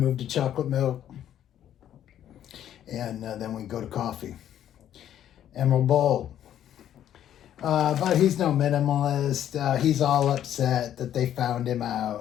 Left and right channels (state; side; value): quieter; right; 10.9 dB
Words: to chocolate milk. And then we go to coffee. Emerald Bowl. But he's no minimalist. He's all upset that they found him